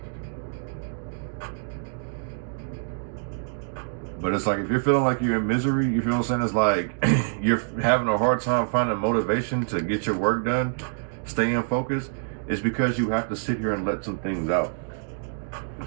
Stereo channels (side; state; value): left; silent; digital silence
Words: But it's like, if you're feeling like you're in misery, you feel what I'm saying? It's like you're having a hard time finding motivation to get your work done, staying focused. It's because you have to sit here and let some things out.